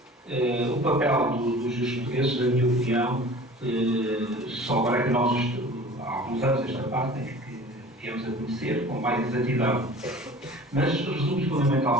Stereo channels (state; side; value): normal; both; correlation 0.43